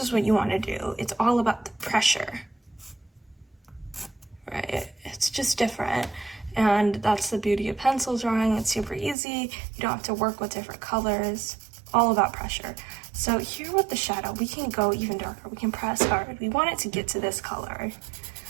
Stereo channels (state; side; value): drops out; left; at 9.2 s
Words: what you want to do. It's all about the pressure, right? It's just different. And that's the beauty of pencil drawing. It's super easy. You don't have to work with different colors. All about pressure. So here with the shadow, we can go even darker. We can press hard. We want it to get to this color.